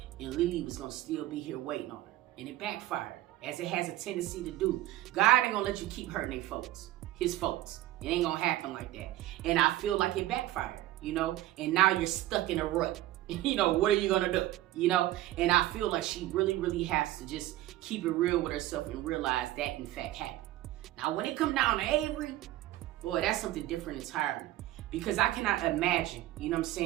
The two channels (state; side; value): quieter; left; 15.4 dB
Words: and Lily was going to still be here waiting on her. And it backfired, as it has a tendency to do. God ain't going to let you keep hurting his folks. It ain't going to happen like that. And I feel like it backfired, you know? And now you're stuck in a rut. You know, what are you going to do? You know? And I feel like she really, really has to just keep it real with herself and realize that, in fact, happened. Now, when it come down to Avery, boy, that's something different entirely. Because I cannot imagine, you know what I'm